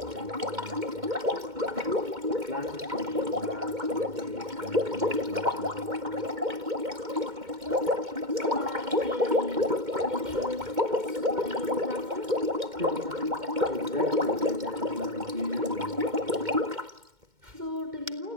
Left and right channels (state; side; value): late; left; 2.2 ms